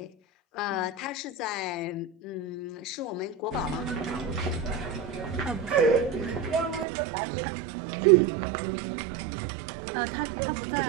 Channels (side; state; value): left; drops out; at 6.9 s